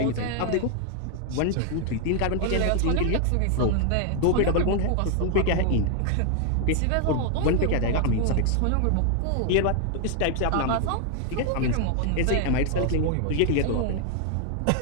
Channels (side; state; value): both; different; correlation 0.00